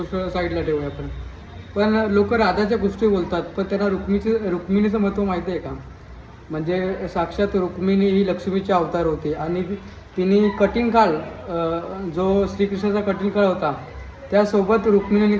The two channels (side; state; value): both; identical; correlation 1.00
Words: साईडला ठेवूया आपण. पण लोक राधाच्या गोष्टी बोलतात, पण त्यांना रुक्मिणीचं महत्त्व माहिती आहे का? म्हणजे साक्षात रुक्मिणी ही लक्ष्मीचे अवतार होते आणि तिने कठीण काळ, जो श्रीकृष्णाचा कठीण काळ होता त्यासोबत रुक्मिणीने